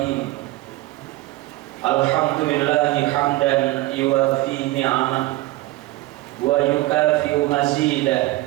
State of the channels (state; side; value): quieter; left; 18.4 dB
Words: Alhamdulillahi hamdan yuwafi ni'amah wa yukafi'u